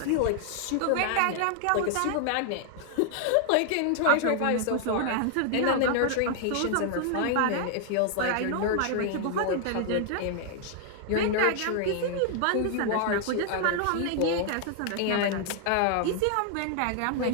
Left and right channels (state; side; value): different; both; correlation 0.00